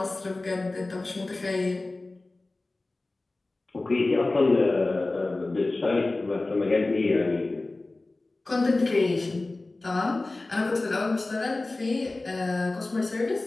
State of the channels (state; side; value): quieter; right; 3.1 dB